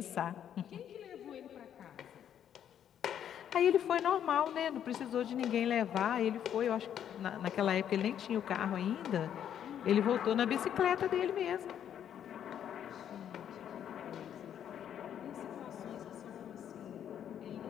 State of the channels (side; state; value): right; quieter; 9.6 dB